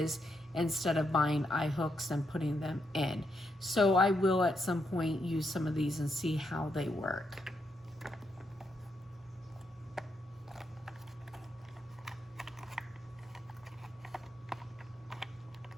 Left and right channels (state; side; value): normal; both; correlation 0.80